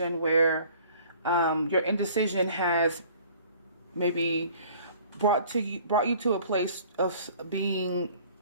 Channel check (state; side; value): inverted; both; correlation -0.51